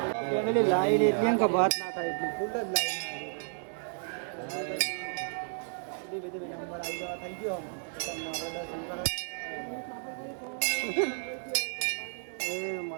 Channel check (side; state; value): left; silent; 56 dB below the other